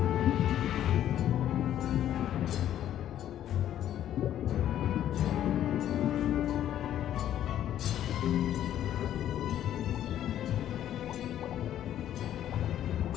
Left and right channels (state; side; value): quieter; right; 11.4 dB